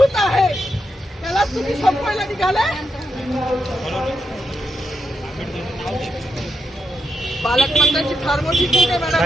आहे, त्याला तुम्ही संपवायला निघालाय. पालकमंत्र्यांची फार मोठी चूक आहे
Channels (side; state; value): both; normal; correlation 0.83